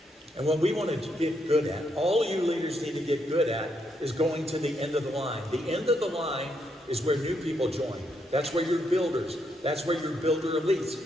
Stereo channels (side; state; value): both; normal; correlation 0.77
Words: And what we want to get good at, all you leaders need to get good at, is going to the end of the line. The end of the line is where new people join. That's where your builders, that's where your builder